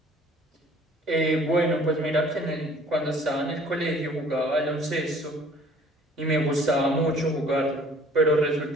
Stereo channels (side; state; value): both; normal; correlation 0.54